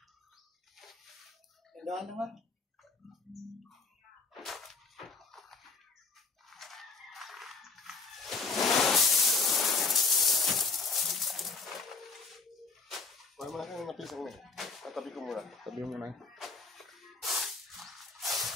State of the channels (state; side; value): quieter; right; 4.2 dB